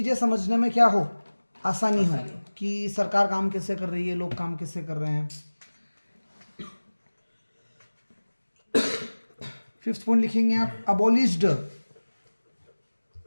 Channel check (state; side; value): inverted; both; correlation -1.00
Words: समझने में क्या हो? आसानी हो कि सरकार काम कैसे कर रही है, लोग काम कैसे कर रहे हैं। फिफ्थ पॉइंट लिखेंगे आप, abolished